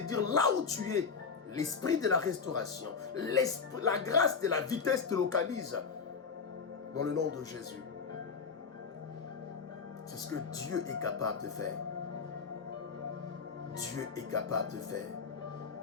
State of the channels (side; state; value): right; quieter; 5.5 dB